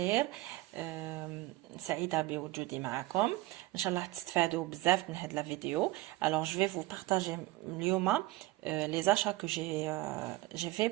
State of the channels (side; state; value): left; quieter; 18.1 dB